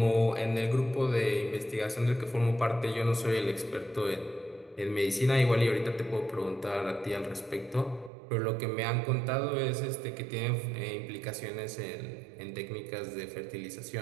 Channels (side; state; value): left; drops out; at 8.1 s